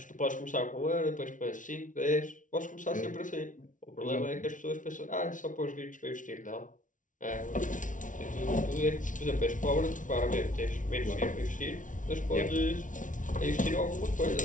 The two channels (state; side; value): late; right; 0.37 ms